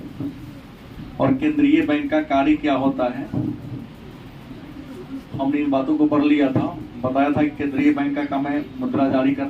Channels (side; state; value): both; identical; correlation 1.00